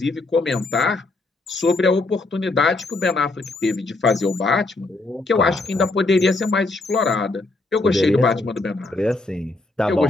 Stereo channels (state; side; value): quieter; right; 3.2 dB